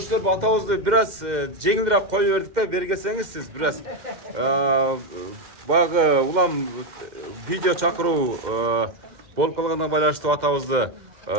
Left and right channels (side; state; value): left; late; 2.1 ms